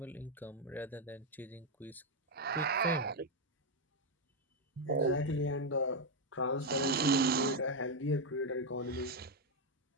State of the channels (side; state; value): both; normal; correlation 0.03